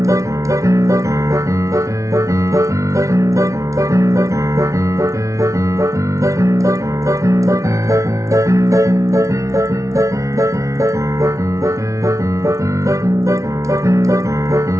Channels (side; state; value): left; late; 0.15 ms